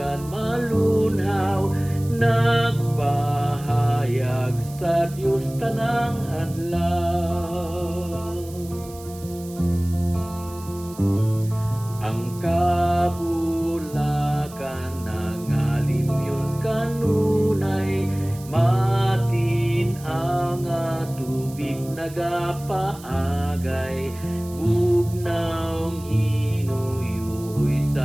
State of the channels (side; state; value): right; noise; hiss, 19 dB below the sound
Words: malunhaw, nagpahayag sa Dios tanang adlaw. Ang kabulakan nangalim yun kanunay, matin ang tubig nagapaagay, bugnaw hinuyuy